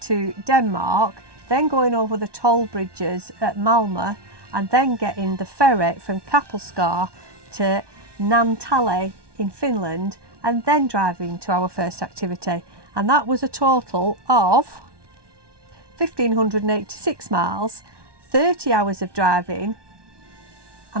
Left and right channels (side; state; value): left; late; 1.2 ms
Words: Denmark, then going over the toll bridges at Malmö, and then getting the ferry from CAMpRA to Naantali in Finland, and then driving to our first activity. And that was a total of 1,586 miles, 30 hours of driving